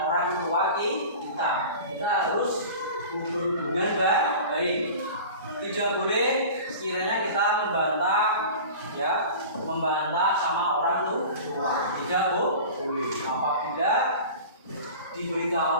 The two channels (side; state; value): both; inverted; correlation -0.37